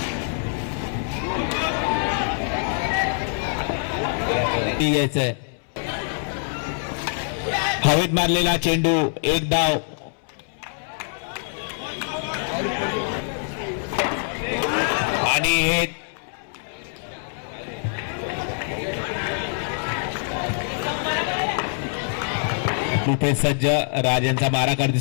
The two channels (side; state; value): right; silent; 62 dB below the other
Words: घ्यायचंय. हवेत मारलेला चेंडू, एक धाव. आणि हे रुपेश सज्ज राजांचा मारा करते